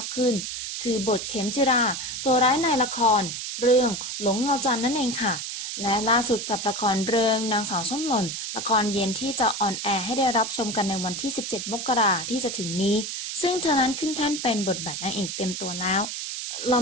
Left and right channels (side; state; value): right; noise; hiss, 5 dB below the sound